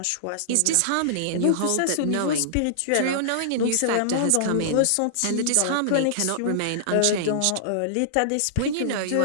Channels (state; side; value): different; both; correlation -0.01